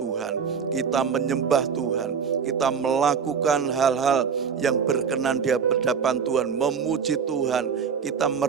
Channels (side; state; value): left; quieter; 6.5 dB